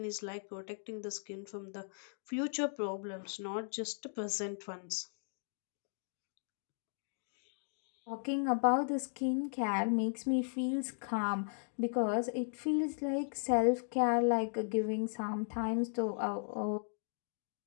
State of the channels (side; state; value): right; silent; digital silence